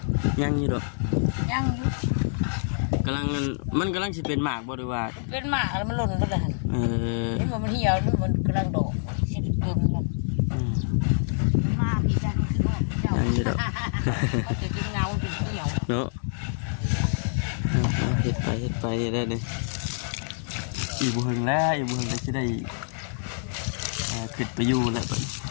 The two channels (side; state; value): right; silent; digital silence